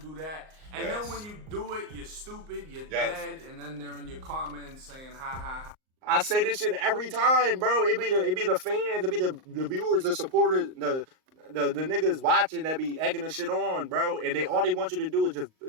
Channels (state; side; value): late; left; 38 ms